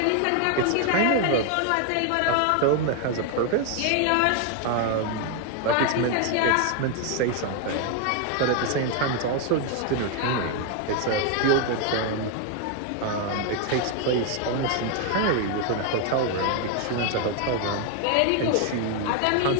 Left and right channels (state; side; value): different; both; correlation 0.01